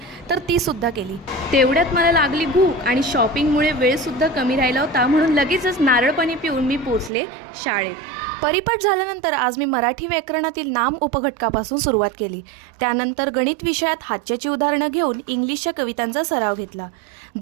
तर ती सुद्धा केली। तेवढ्यात मला लागली भूक आणि शॉपिंगमुळे वेळसुद्धा कमी राहिला होता, म्हणून लगेचच नारळ पाणी पिऊन मी पोचले शाळेत। परिपाठ झाल्यानंतर आज मी मराठी व्याकरणातील नाम उपघटकापासून सुरुवात केली। त्यानंतर गणित विषयात हातच्याची उदाहरणं घेऊन इंग्लिशच्या कवितांचा सराव घेतला।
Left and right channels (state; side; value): drops out; left; at 7.1 s